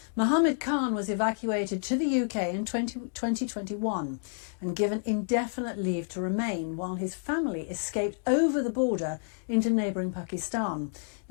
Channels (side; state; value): right; silent; digital silence